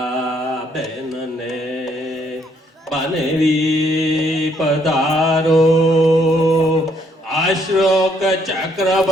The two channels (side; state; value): both; normal; correlation 0.69